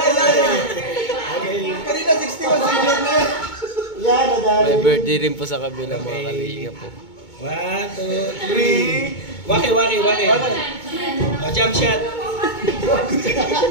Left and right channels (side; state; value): right; late; 2.2 ms